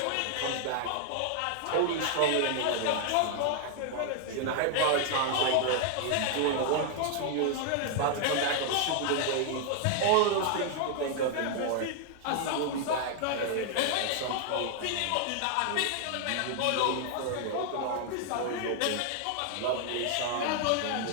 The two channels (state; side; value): different; both; correlation 0.00